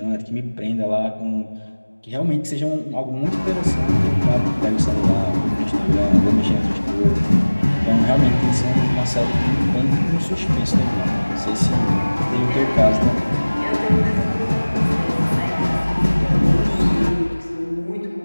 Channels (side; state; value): both; inverted; correlation -1.00